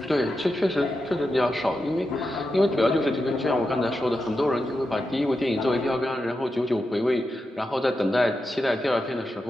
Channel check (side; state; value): both; normal; correlation 0.88